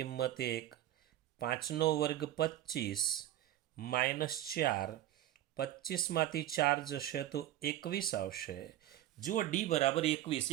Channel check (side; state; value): left; quieter; 13.4 dB